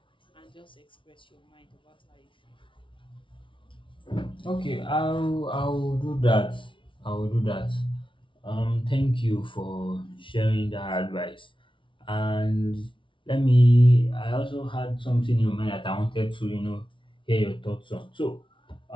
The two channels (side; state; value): right; late; 0.25 ms